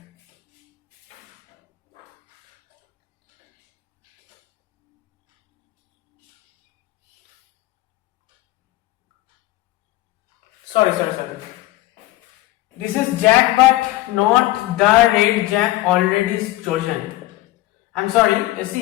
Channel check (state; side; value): quieter; right; 17.2 dB